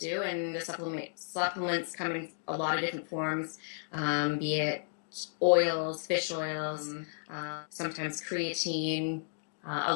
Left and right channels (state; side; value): silent; right; digital silence